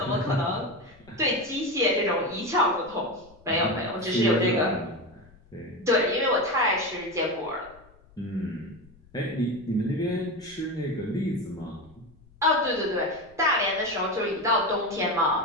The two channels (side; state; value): left; noise; rumble, 27 dB below the sound